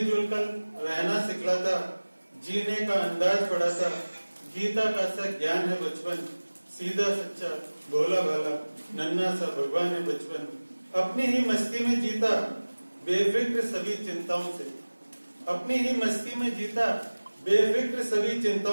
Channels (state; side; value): inverted; both; correlation -1.00